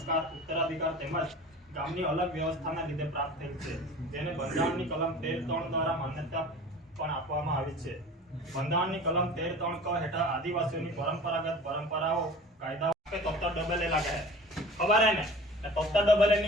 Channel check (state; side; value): normal; both; correlation 0.41